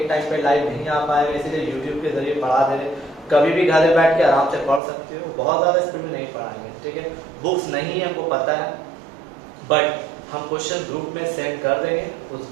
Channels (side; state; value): left; drops out; at 4.8 s